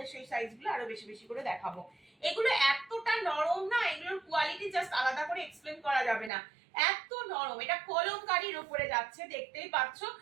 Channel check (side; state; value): left; drops out; at 6.3 s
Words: সেই সাইজগুলো আরো বেশি বেশি করে দেখাবো। এগুলো এতটা নরম না, এগুলো জাস্ট আলাদা করে এক্সপ্লেন করা যাবে না, এত নরম। এটা কলমকারীর উপরে যাচ্ছে, দেখতেই পাচ্ছ